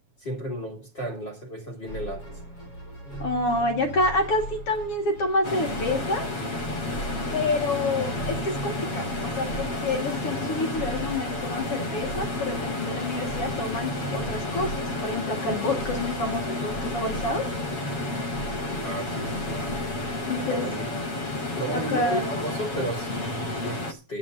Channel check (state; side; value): late; right; 7.2 ms